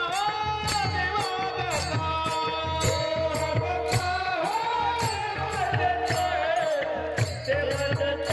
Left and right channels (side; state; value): both; identical; correlation 1.00